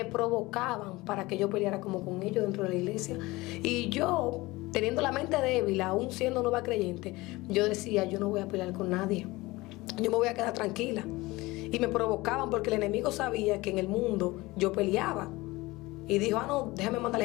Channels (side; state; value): right; quieter; 20.9 dB